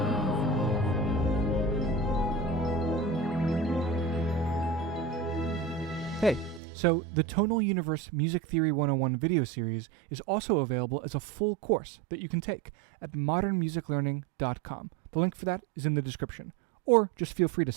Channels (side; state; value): left; drops out; at 6.6 s